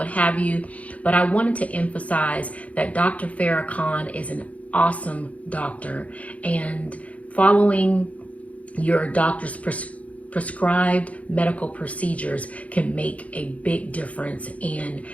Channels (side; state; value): right; late; 0.067 ms